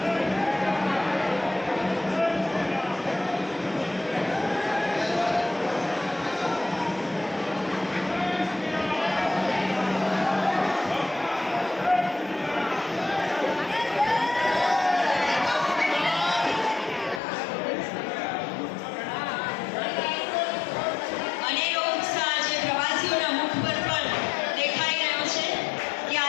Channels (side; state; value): right; drops out; at 17.2 s